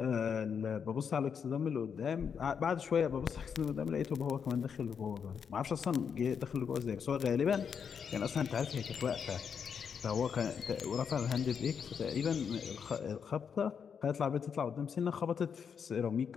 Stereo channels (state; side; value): quieter; right; 6.9 dB